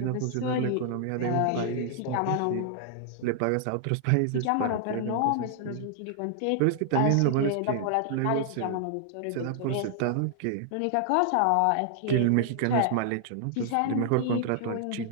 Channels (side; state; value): both; different; correlation 0.00